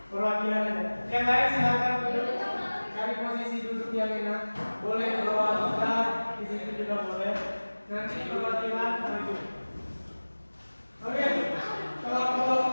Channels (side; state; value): both; inverted; correlation -1.00